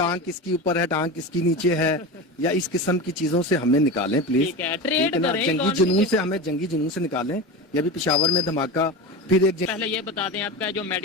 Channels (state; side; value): normal; both; correlation 0.25